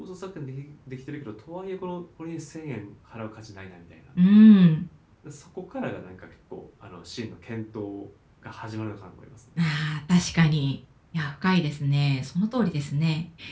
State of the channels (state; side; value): identical; both; correlation 1.00